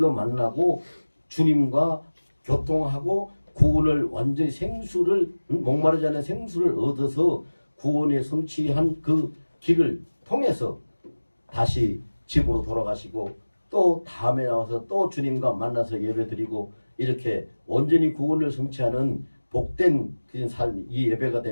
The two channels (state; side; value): inverted; both; correlation -1.00